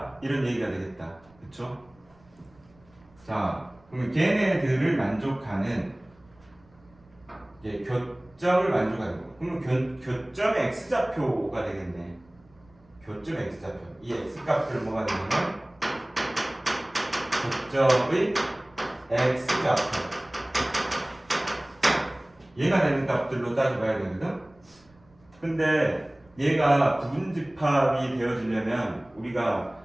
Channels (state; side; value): noise; right; rumble, 30 dB below the sound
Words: 이런 얘기가 되겠다. 그쵸? 자, 그러면 걔네들을 만족하는 교점을 만족하는 거. 그러면 교점의 x좌표가 되겠네. 교점 x좌표. 이 x값들 뭐가 되냐면 교점의 x좌표. 얘가 되는 값들로 따져봐야 되거든. 근데 얘가 부분집합이 되어지려면 우리가